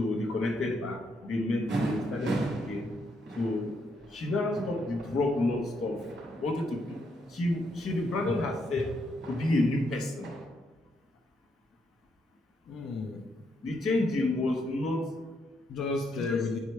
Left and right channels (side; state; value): both; normal; correlation 0.77